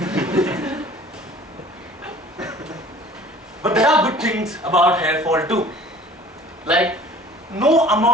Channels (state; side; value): normal; both; correlation 0.48